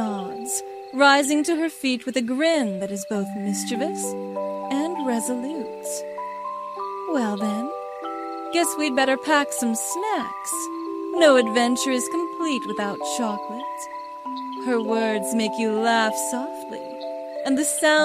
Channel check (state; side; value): identical; both; correlation 1.00